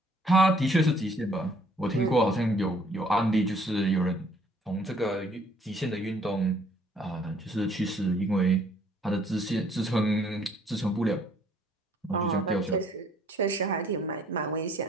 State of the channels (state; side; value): normal; both; correlation 0.61